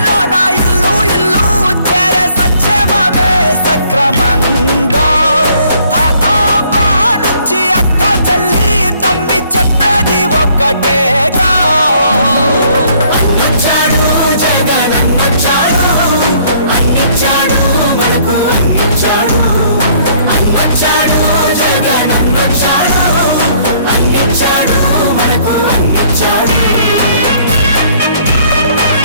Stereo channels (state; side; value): inverted; both; correlation -0.62